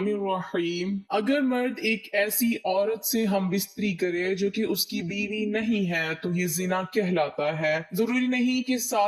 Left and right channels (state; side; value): identical; both; correlation 1.00